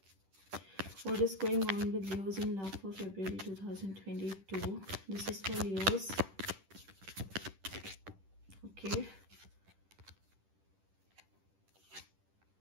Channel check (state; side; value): late; left; 10 ms